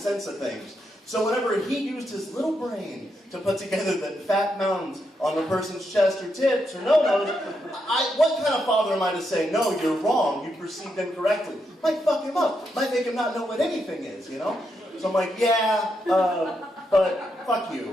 of things. So whenever he used his little brain to put together the fat mountains on the person's chest or tits or no-nos, what kind of father am I to say, no, you're wrong, you perceived incorrectly? Might fuck him up. Might make him not know what anything is, you know? So I'm like, yeah, but fuck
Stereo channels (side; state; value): both; normal; correlation 0.82